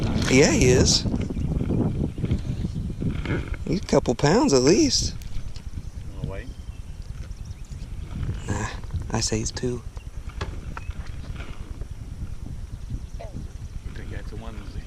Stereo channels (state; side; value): identical; both; correlation 1.00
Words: Yeah, he is. He's a couple pounds at least. Wanna wait? Nah, I say he's 2. You think that's the one that's